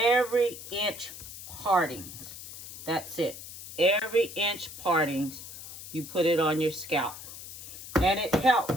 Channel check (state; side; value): noise; left; hiss, 12 dB below the sound